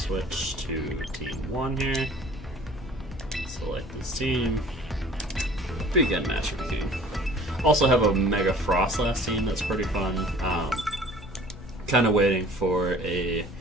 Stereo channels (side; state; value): both; normal; correlation 0.49